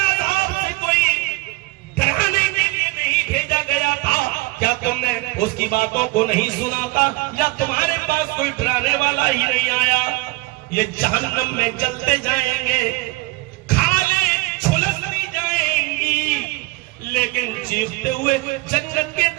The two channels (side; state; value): left; quieter; 21.6 dB